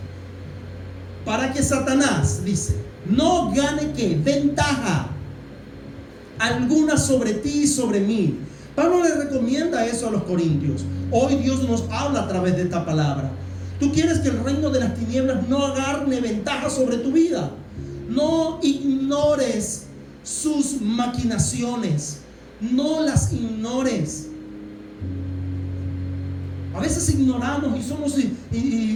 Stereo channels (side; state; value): both; identical; correlation 1.00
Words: Para que Satanás, dice, no gane ¿qué? Ventaja alguna sobre ti y sobre mí. Pablo le recomienda eso a los corintios. Hoy Dios nos habla a través de esta palabra. Tú quieres que el reino de las tinieblas no agarre ventaja sobre tu vida. No ignores sus maquinaciones. No las ignores. A veces ignoramos y somos